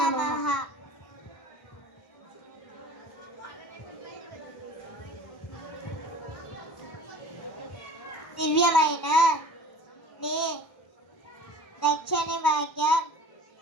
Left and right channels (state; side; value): late; right; 1.0 ms